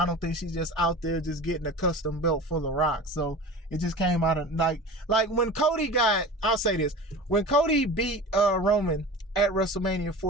don't think she's just out there just getting a custom belt for The Rock. So it just came out of like when Cody I'll say this, when Cody beat Roman at WrestleMania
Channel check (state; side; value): normal; both; correlation 0.35